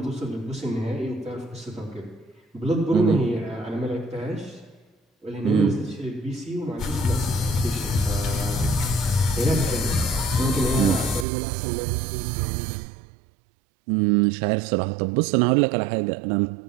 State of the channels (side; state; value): left; drops out; at 11.2 s